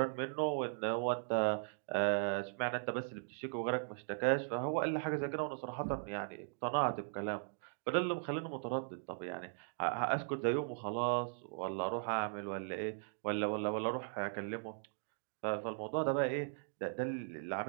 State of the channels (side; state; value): left; silent; digital silence